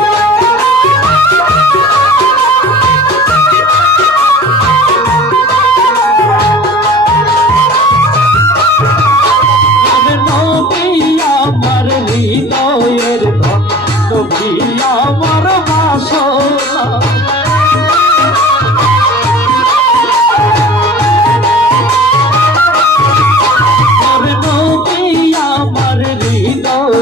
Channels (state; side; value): noise; right; hum, 26 dB below the sound